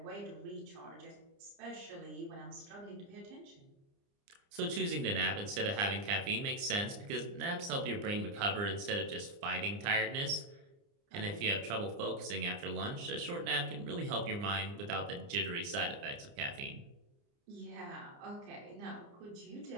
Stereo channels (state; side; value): late; left; 29 ms